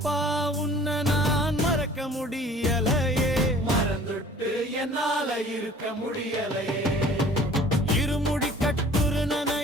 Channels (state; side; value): normal; both; correlation 0.50